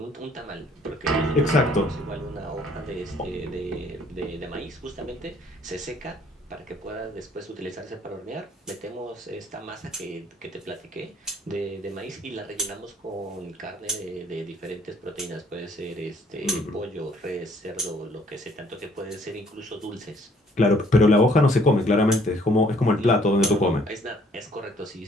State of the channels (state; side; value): normal; both; correlation 0.61